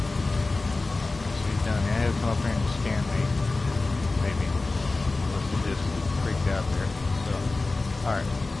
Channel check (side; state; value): right; quieter; 3.4 dB